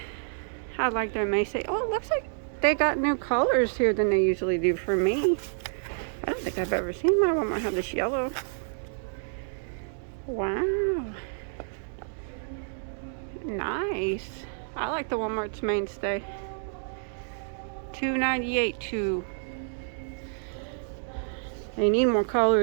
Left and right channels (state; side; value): silent; left; digital silence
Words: I like their mainstay. Oh, it looks like they got new colors here than they usually do for me. I don't think I've ever seen my Walmart have this yellow. Wow. Nice. I like the Walmart's mainstay. $2.98 too. They need more